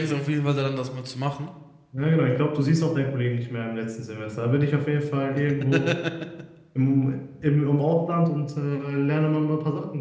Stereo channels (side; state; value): both; identical; correlation 1.00